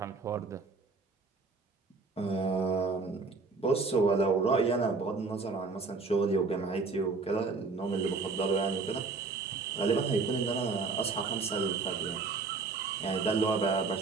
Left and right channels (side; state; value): left; quieter; 4.2 dB